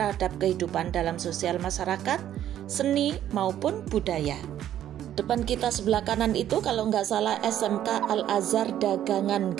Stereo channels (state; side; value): quieter; left; 11.3 dB